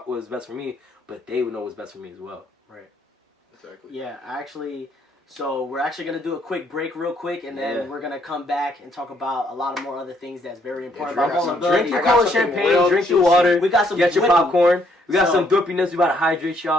best for me, but they would know what's best for me as well. Right. Exactly. Yeah, so we're actually going to do a quick break real quick, and then we're going to come back and talk about a lot of more other things that's very important. Drink your cola champagne, drink your water, we got some get your popcorn. We got some doopiness. We about to hydrate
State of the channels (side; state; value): both; normal; correlation 0.69